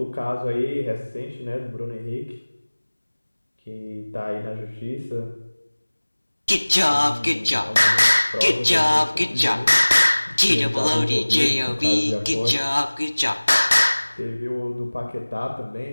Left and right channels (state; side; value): inverted; both; correlation -1.00